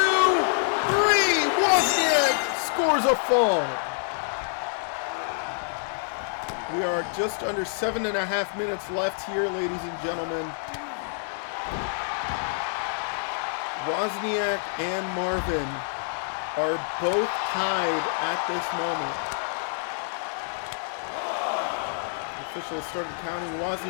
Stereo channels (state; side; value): silent; right; digital silence